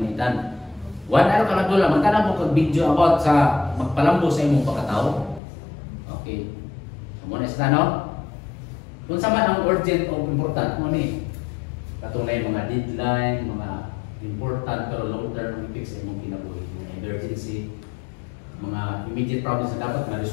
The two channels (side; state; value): right; drops out; at 5.4 s